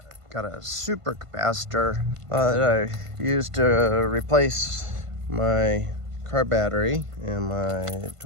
got a supercapacitor that I used to replace my car battery in my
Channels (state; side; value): late; left; 1.5 ms